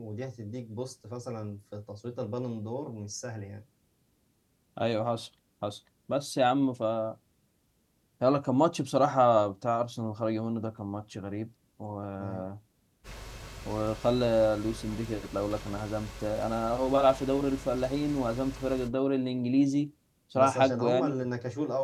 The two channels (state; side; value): identical; both; correlation 1.00